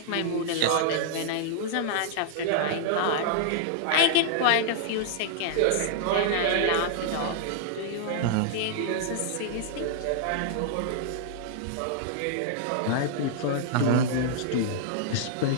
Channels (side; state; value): both; different; correlation -0.01